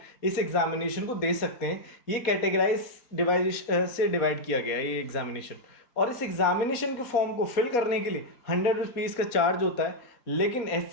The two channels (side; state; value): right; late; 4.2 ms